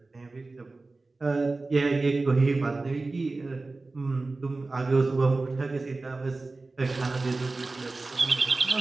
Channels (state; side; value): quieter; left; 3.4 dB